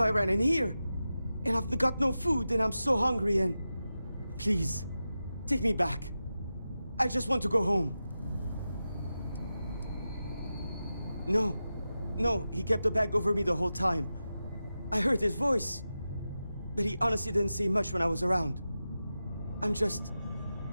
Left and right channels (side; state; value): both; inverted; correlation -0.92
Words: I ran in here, and I've got no food, and I'm so hungry, and... Please, take me back. I just want to go home. No, he kept the bag over me the whole time. I heard his voice, but he honestly didn't say much when I was around.